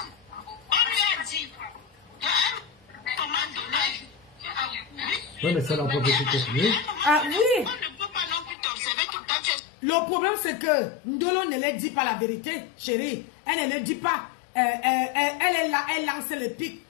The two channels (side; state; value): right; drops out; at 8.6 s